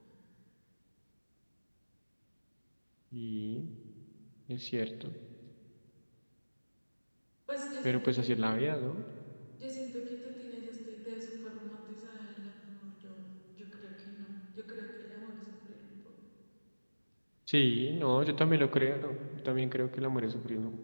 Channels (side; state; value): both; inverted; correlation -1.00